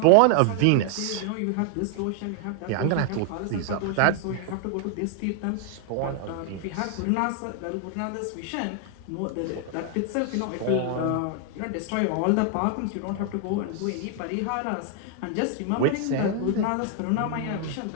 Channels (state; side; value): different; both; correlation 0.00